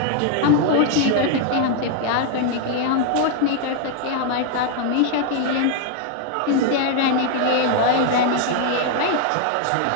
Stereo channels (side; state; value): both; different; correlation 0.00